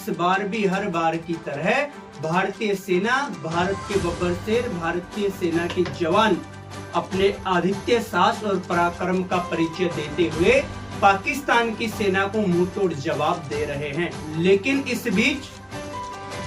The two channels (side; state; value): both; identical; correlation 1.00